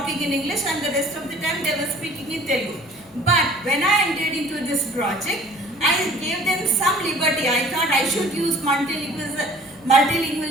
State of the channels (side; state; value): both; normal; correlation 0.50